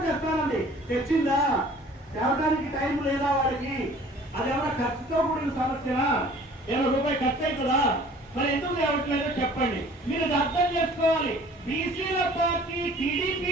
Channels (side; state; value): both; normal; correlation 0.50